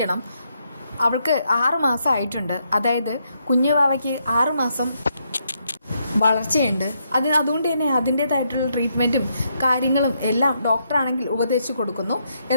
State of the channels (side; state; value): both; inverted; correlation -0.77